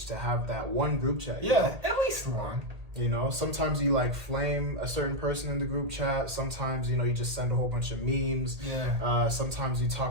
to have that one group chat. Yeah, at least one. You know, sometimes you like flame a certain person in the group chat. Sometimes, you know, you just send a whole bunch of memes. Yeah. Sometimes you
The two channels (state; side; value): late; left; 1.8 ms